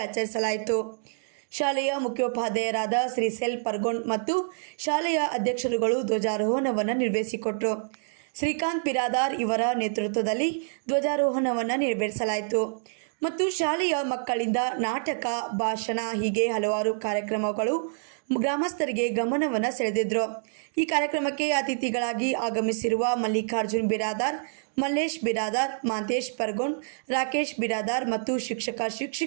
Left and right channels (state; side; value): silent; left; digital silence